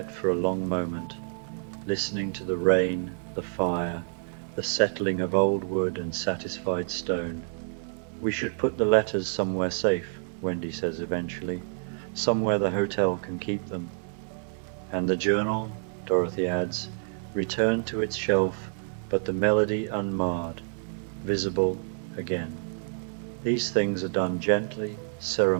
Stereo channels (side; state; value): left; silent; 59 dB below the other